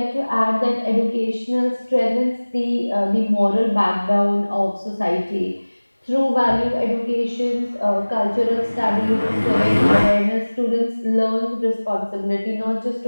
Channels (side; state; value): both; inverted; correlation -1.00